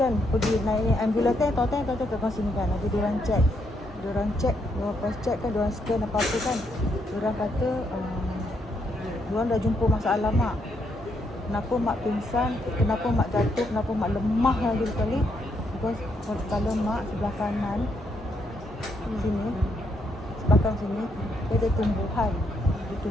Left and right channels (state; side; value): normal; both; correlation 0.76